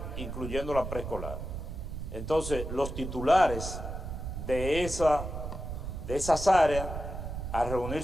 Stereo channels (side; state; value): right; noise; rumble, 6 dB below the sound